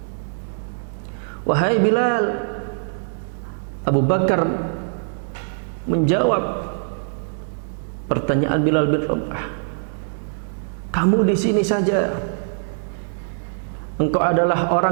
Wahai Bilal, Abu Bakar menjawab pertanyaan Bilal bin Rabah. kamu di sini saja. Engkau adalah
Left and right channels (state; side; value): silent; left; 64 dB below the other